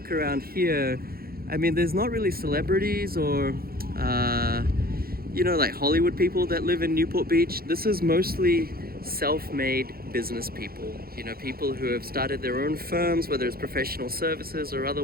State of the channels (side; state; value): left; late; 0.44 ms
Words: around here, I mean, there's not really celebrities or, like Hollywood people that live in Newport Beach. This is mostly self-made business people, people who have started their own firms, whether it's professional services or